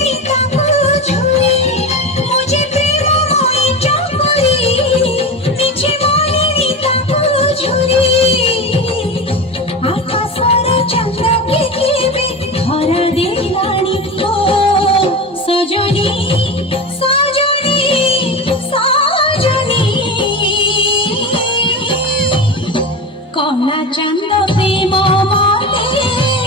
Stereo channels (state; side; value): normal; both; correlation 0.25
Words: তাকু ঝুরি মুঝে প্রেম মই চকরি মিছে মনেরি তাকু ঝুরি আকাশর চন্দ্রকে কেবে ধরা দেলানি ও সজনী সজনী সজনী কলা চাঁদ প্রেম মতে